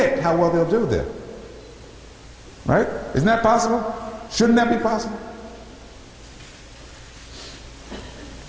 how well they'll do there. Right? Isn't that possible? Shouldn't that be possible?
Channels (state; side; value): identical; both; correlation 1.00